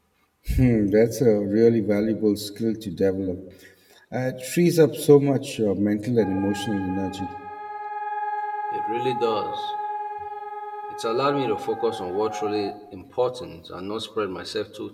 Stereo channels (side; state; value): both; identical; correlation 1.00